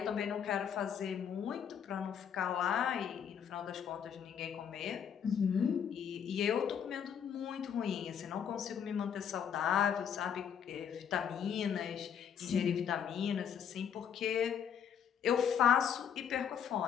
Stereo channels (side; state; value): right; quieter; 8.1 dB